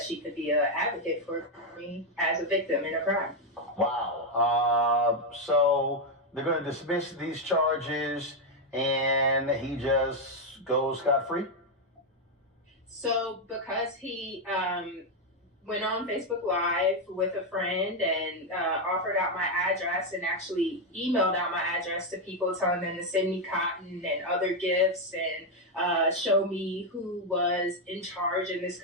she could be an advocate for me as a victim in a crime. Wow. So they're going to dismiss these charges and he just goes scot-free? So because he went on Facebook Live with a friend and offered out my address and actually emailed out my address to people, telling them to send me cotton and other gifts and show me who was in charge in this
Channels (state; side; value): normal; both; correlation 0.03